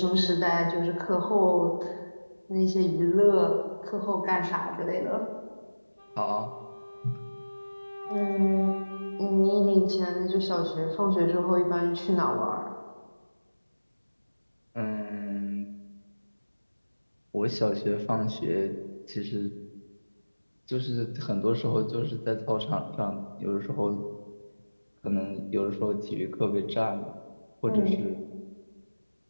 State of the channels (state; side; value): inverted; both; correlation -1.00